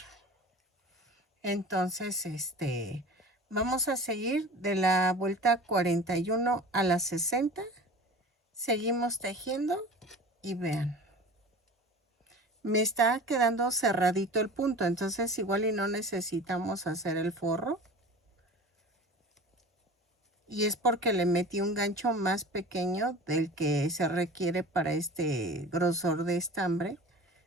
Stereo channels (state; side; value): normal; both; correlation 0.37